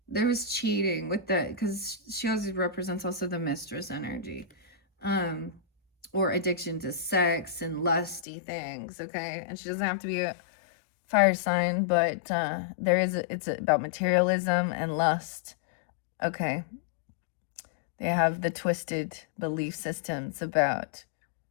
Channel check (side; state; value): right; drops out; at 8.2 s